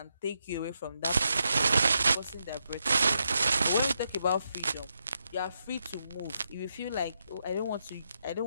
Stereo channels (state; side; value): inverted; both; correlation -0.83